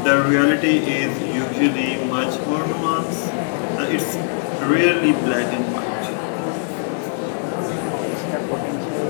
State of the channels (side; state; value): right; silent; digital silence